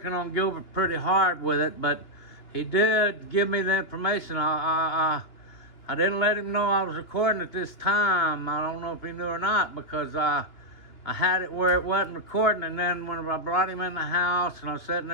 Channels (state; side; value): late; right; 2.9 ms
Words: on Gilbert pretty hard with it, but he did give me the information. I didn't let him know I was recording at this time. I don't know if he knew or not, because I had it where it wasn't recording, and then when I brought him in the house and I was sitting